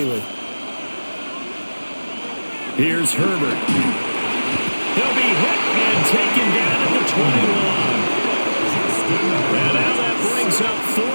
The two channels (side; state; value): both; inverted; correlation -1.00